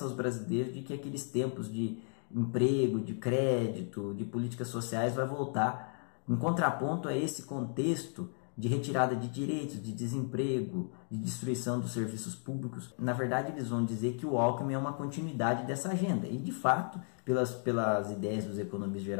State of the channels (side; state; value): right; silent; 55 dB below the other